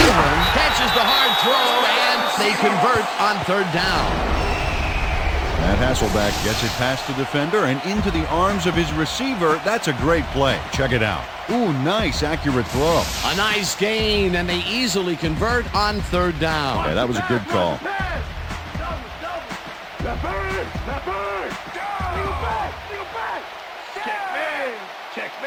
catches the hard throw, and they convert on third down. Matt Hasselbeck gets it past the defender and into the arms of his receiver. That's a great play. Check it out. Ooh, nice, accurate throw. A nice gain, and they easily convert on third down. Yeah, that was a good call. Left bird! Go back! Check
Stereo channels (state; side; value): identical; both; correlation 1.00